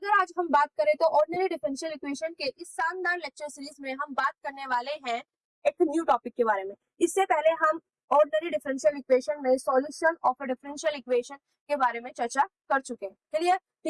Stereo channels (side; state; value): both; identical; correlation 1.00